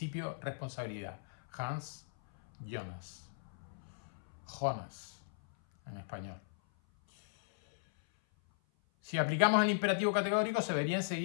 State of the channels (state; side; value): silent; right; 53 dB below the other